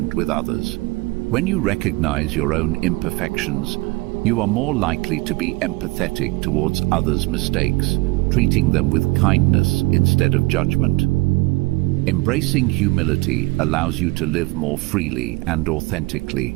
with others. When you recognize your own imperfections, you are more likely to be empathetic towards others' mistakes, treating them with kindness instead of judgment. Embracing humility allows you to live more freely and authentically.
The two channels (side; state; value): left; quieter; 23.2 dB